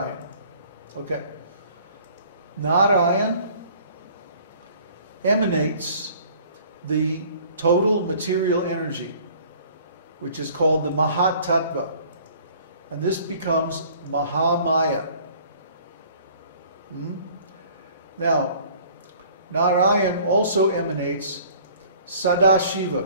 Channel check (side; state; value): both; inverted; correlation -0.53